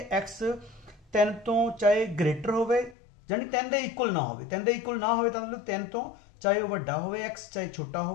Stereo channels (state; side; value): drops out; right; at 3.0 s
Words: एक्स 3 तो चाहे ग्रेटर हो, यानी 10 के इक्वल ना हो, 10 के इक्वल ना हो तो मतलब 10 तो चाहे वह वड्डा हो, एक्स चाहे छोटा हो,